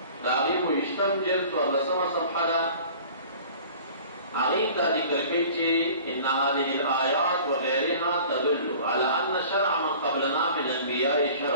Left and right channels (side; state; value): both; inverted; correlation -0.45